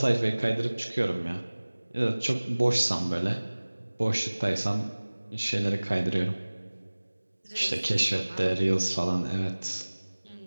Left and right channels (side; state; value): both; inverted; correlation -1.00